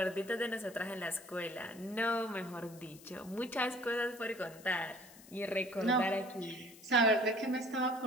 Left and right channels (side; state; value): left; noise; hiss, 21 dB below the sound